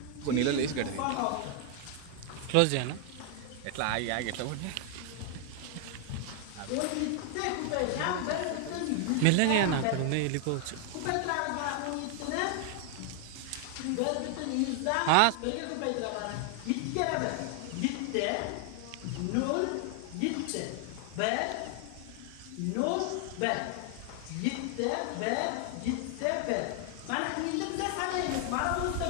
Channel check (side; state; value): both; different; correlation 0.00